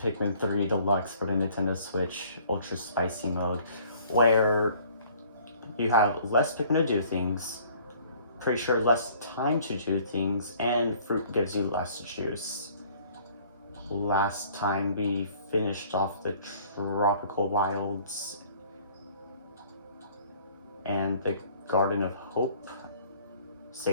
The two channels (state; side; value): inverted; both; correlation -0.55